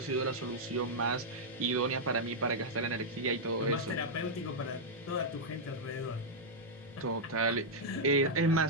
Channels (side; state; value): both; normal; correlation -0.05